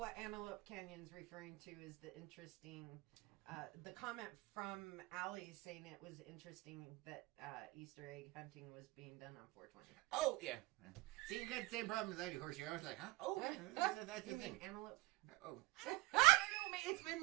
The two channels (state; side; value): quieter; left; 22.5 dB